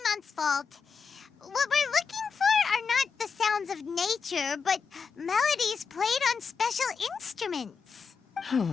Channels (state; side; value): quieter; right; 5.6 dB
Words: fault. What we're looking for are not the sounds of nature, but melodies played on special instruments.